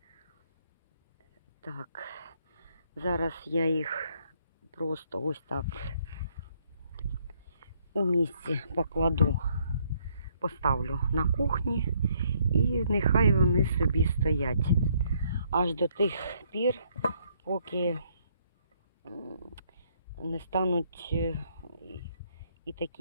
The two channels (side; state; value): both; inverted; correlation -0.69